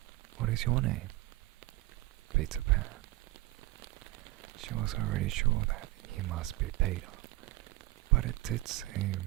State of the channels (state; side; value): quieter; left; 18.7 dB